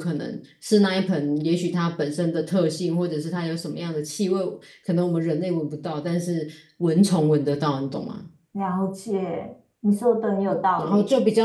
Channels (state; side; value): identical; both; correlation 1.00